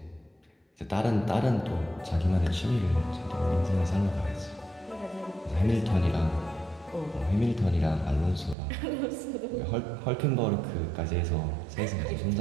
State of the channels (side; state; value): left; drops out; at 8.6 s